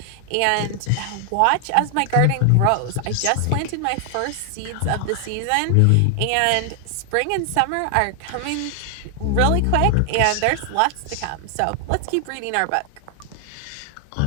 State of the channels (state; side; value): different; both; correlation 0.00